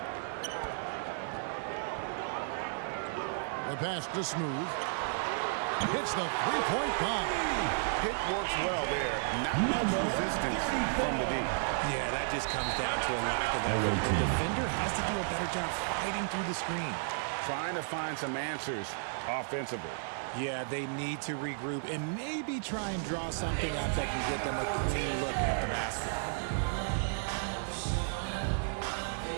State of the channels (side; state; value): left; silent; digital silence